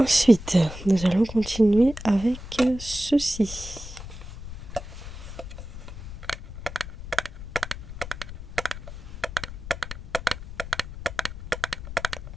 nous allons continuer avec ceci.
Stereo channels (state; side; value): noise; left; rumble, 11 dB below the sound